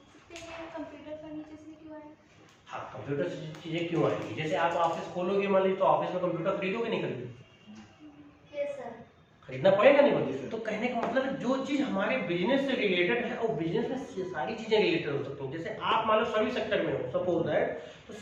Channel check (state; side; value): identical; both; correlation 1.00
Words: सकते हैं, कंप्यूटर फर्नीचर से क्यों आए? हाँ, कंप्यूटर से चीजें क्यों आएंगी? जैसे आप ऑफिस खोलोगे, मान लीजिए, तो ऑफिस में कंप्यूटर खरीदोगे नहीं खरीदोगे? Yes sir. खरीदना पड़ेगा नहीं बल्कि। तो कहने का मतलब है जो चीज हमारे बिजनेस से रिलेटेड है और बिजनेस में सारी चीजें रिलेटेड हो सकती हैं। जैसे आप मान लो सर्विस सेक्टर में हो, सपोज दैट, तो